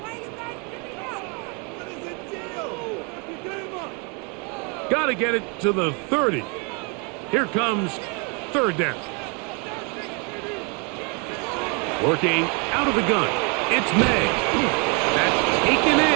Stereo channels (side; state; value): left; quieter; 33.4 dB